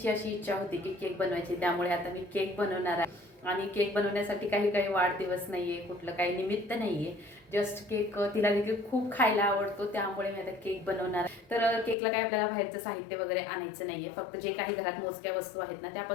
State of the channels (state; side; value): drops out; right; at 12.0 s